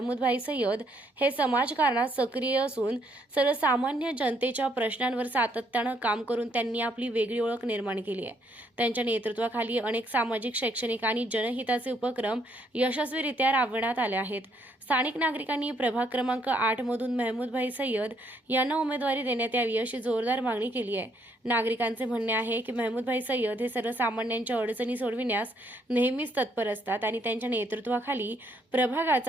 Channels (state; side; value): normal; both; correlation 0.70